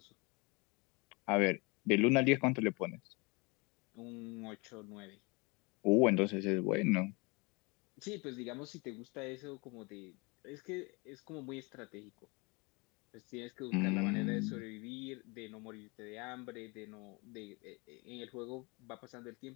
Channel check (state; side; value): quieter; right; 27.9 dB